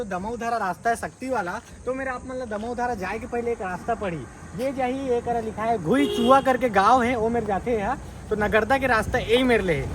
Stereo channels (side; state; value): both; identical; correlation 1.00